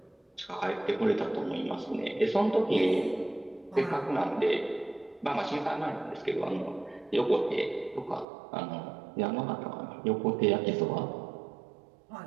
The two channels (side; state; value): left; drops out; at 8.2 s